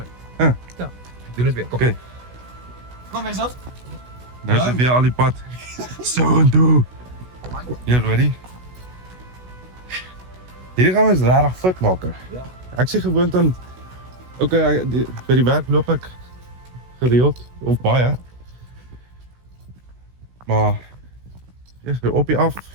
Ja. Ja. Doen dit weer. Kom. Okay. Kom eens af. Nou sit weer al die pad. So en toe. Jy ready? Hierdie gaan ons regtig fit maak. Ja. Ek sê gewoond aan by die werk loop ek gereeld of baie. Maar ja, op je af.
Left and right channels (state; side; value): late; left; 16 ms